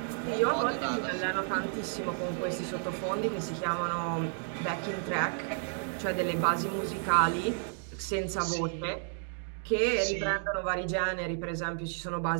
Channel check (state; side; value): silent; left; 57 dB below the other